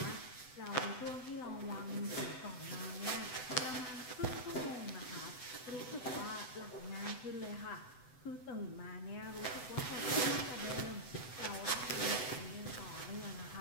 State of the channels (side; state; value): right; late; 7.9 ms